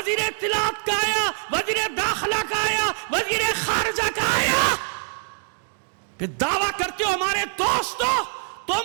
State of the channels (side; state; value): left; silent; 56 dB below the other